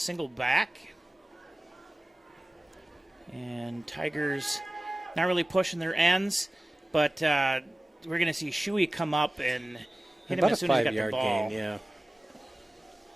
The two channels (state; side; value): normal; both; correlation 0.97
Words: back. And Tigers not really pushing their ends, but we're going to see Shuey come up and hit him as soon as he got the ball. Gain, yeah.